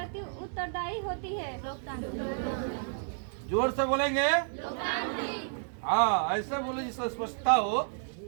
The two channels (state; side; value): silent; left; digital silence